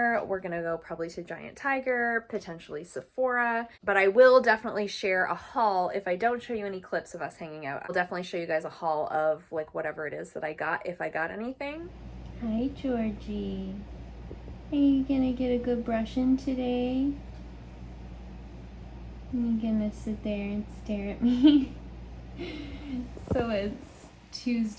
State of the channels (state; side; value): identical; both; correlation 1.00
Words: We're gonna go probably to Giant Tiger, potentially Sephora. But I will definitely share a haul. If I don't show you any clips of us hanging out, I'll definitely show you guys a haul of like whatever it is that I got, if I got anything. Hi, Georgie. Are you gonna get a good brushing today? Are you gonna sit there and stare at me? So it's